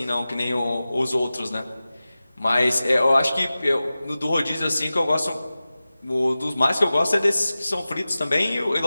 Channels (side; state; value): both; inverted; correlation -0.96